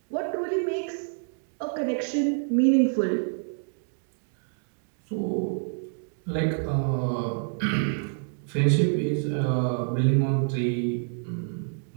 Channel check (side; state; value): left; silent; digital silence